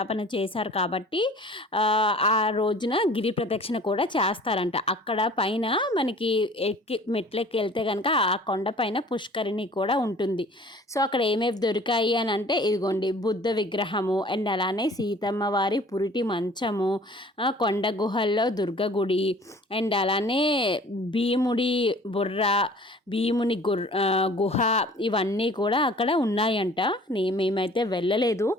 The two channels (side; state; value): both; normal; correlation 0.49